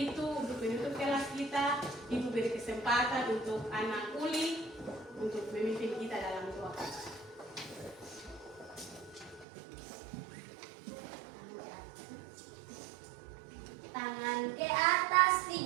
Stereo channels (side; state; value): left; drops out; at 9.5 s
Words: untuk menutup kelas kita, Ibu beri kesempatan untuk anak Uli